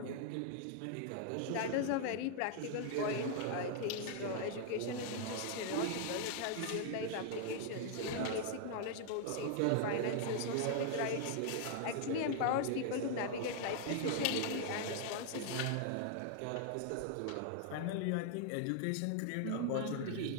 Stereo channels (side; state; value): both; different; correlation 0.00